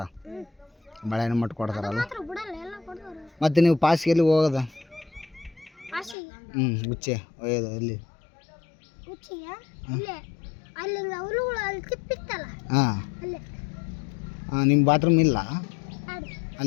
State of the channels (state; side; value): drops out; right; at 6.2 s